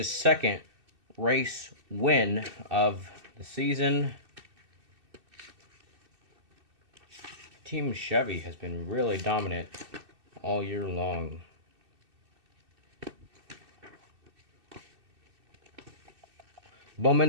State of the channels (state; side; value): late; left; 2.6 ms